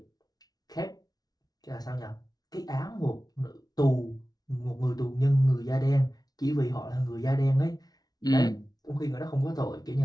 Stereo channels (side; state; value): right; late; 0.19 ms